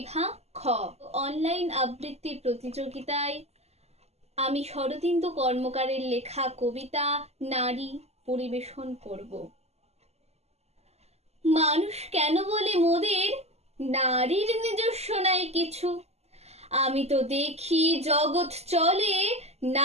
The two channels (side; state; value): left; late; 0.30 ms